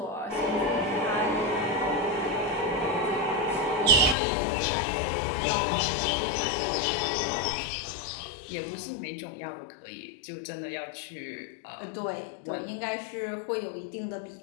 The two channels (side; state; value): right; drops out; at 4.2 s